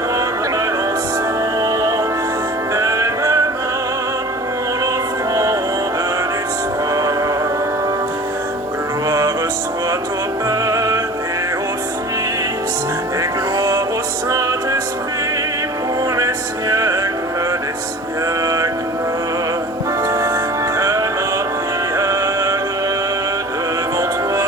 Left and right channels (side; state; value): both; normal; correlation 0.41